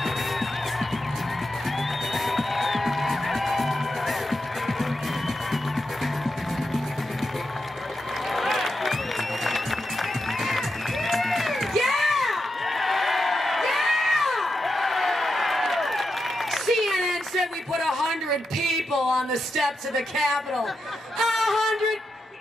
We put 100 people on the steps of the Capitol. 100.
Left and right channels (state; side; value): normal; both; correlation 0.87